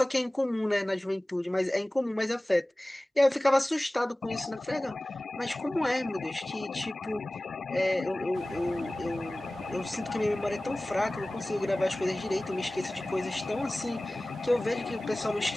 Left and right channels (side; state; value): both; normal; correlation 0.98